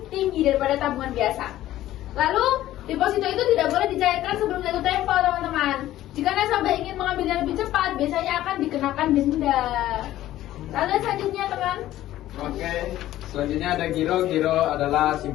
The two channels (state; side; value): quieter; right; 14.1 dB